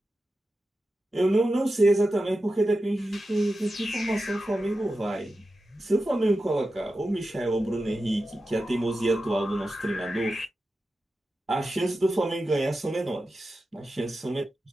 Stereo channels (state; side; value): normal; both; correlation 0.92